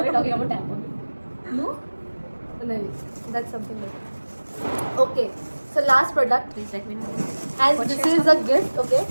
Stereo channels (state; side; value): inverted; both; correlation -1.00